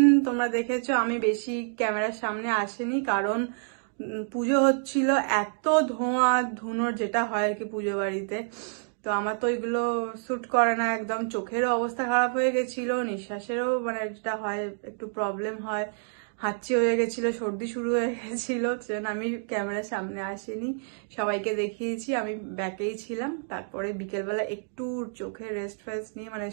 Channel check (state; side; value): silent; left; digital silence